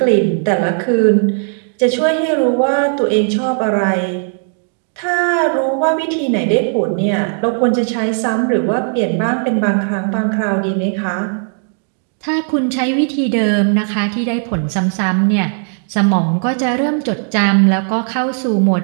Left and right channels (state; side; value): silent; left; 58 dB below the other